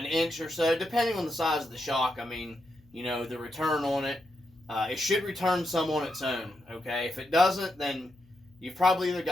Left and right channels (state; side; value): noise; left; hum, 29 dB below the sound